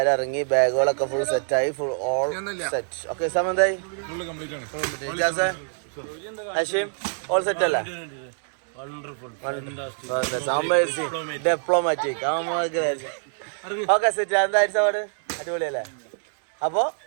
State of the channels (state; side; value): silent; left; digital silence